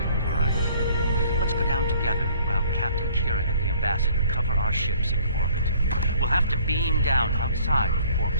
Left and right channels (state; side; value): inverted; both; correlation -0.57